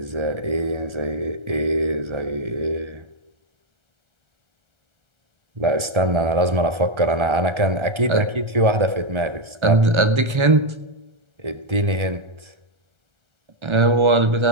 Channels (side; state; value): left; late; 1.3 ms